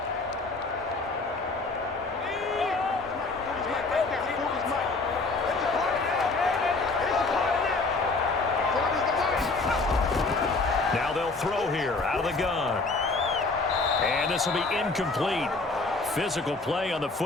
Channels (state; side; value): quieter; right; 3.6 dB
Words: Now they'll throw here out of the gun. And this will be incomplete. Physical play on the